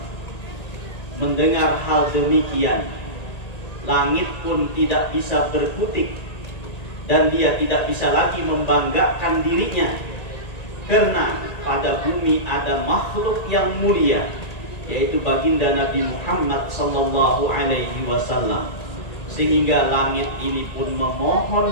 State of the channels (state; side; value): late; right; 1.9 ms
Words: Mendengar hal demikian, langit pun tidak bisa berkutik, dan dia tidak bisa lagi membanggakan dirinya, karena pada bumi ada makhluk yang mulia, yaitu baginda Nabi Muhammad sallallahu alaihi wasallam. Sehingga langit ini pun